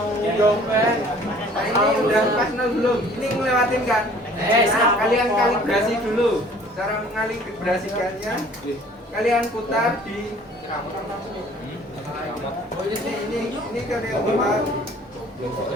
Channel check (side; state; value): both; normal; correlation 0.52